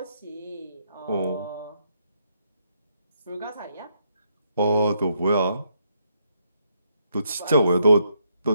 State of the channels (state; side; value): inverted; both; correlation -0.76